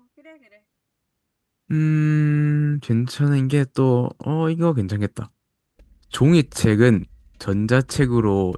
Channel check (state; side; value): identical; both; correlation 1.00